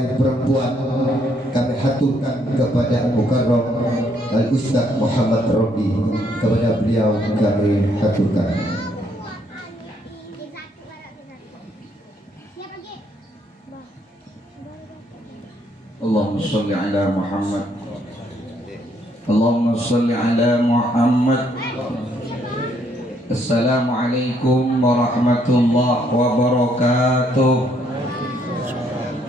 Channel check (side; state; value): both; normal; correlation 0.70